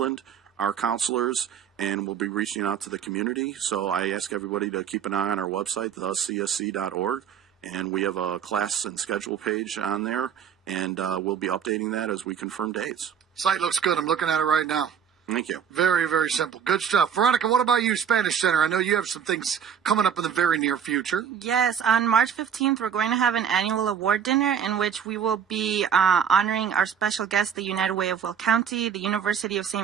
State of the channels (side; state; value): left; quieter; 8.0 dB